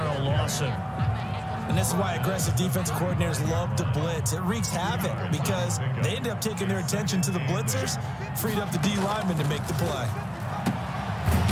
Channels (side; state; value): both; identical; correlation 1.00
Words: Lawson. And this is why aggressive defense coordinators love to blitz. It wreaks havoc because they end up taking their attention to the blitzers, freed up the D lineman to make the play.